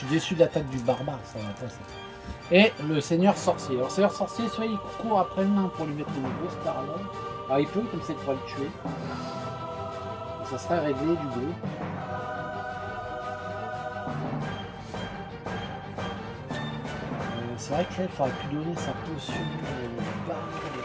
déçu de l'attaque du barbare, ça va pas ça. Et le seigneur sorcier. Alors, seigneur sorcier, soit il court après le nain pour lui mettre une grosse parallèle. Alors, il peut, comme ça, il pourrait le tuer. Et ça serait réglé du bleu. C'est vrai qu'il faudrait plus donner sa potion barbe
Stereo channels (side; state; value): both; identical; correlation 1.00